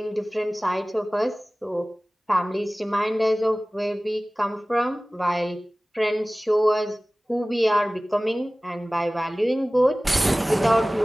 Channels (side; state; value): both; normal; correlation 0.98